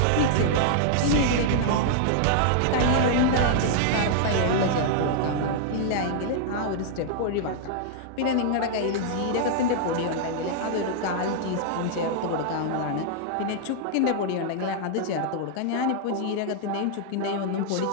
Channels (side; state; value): both; different; correlation -0.01